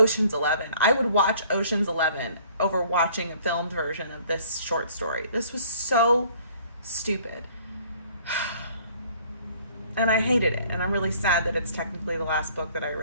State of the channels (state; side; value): inverted; both; correlation -0.56